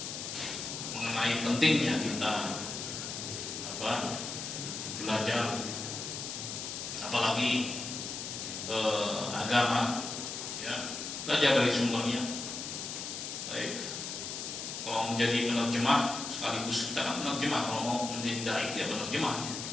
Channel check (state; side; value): noise; left; hiss, 6 dB below the sound